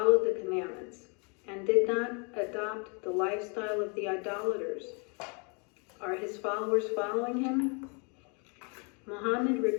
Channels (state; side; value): quieter; right; 34.8 dB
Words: the commandments, and did not adopt the lifestyle of the idolaters. Are his followers following him? Muhammad